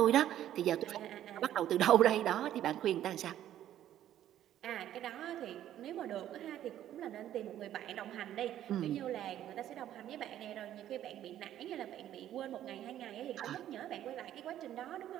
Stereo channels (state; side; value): quieter; left; 11.8 dB